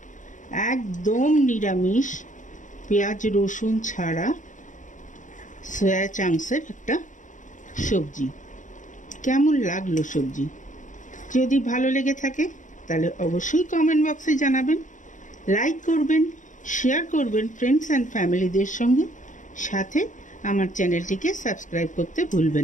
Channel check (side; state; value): right; late; 0.37 ms